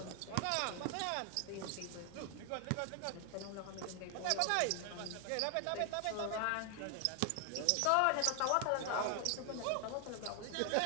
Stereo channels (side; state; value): both; different; correlation 0.00